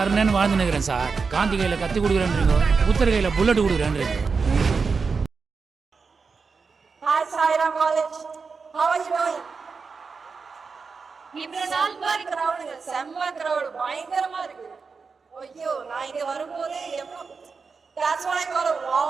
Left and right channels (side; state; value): left; quieter; 4.9 dB